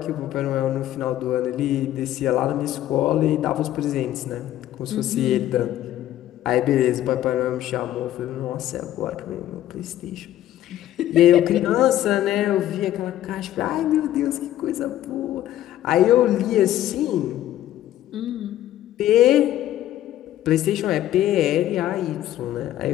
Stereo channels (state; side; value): quieter; right; 13.0 dB